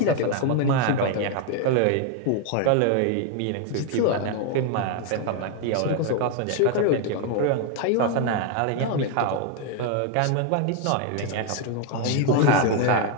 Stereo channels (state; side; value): different; both; correlation 0.01